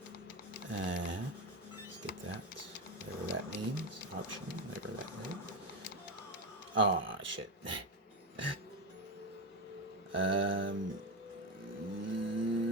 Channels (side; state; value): both; normal; correlation 0.13